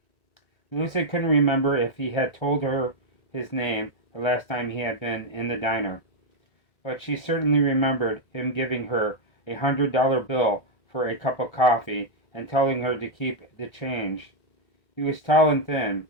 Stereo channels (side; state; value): right; late; 1.6 ms